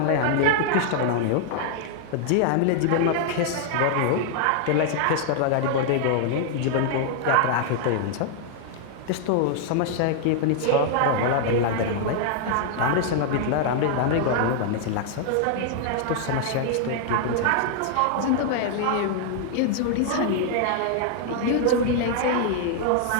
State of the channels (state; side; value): different; both; correlation 0.00